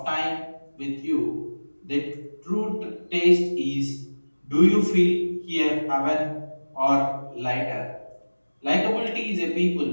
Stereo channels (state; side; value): inverted; both; correlation -1.00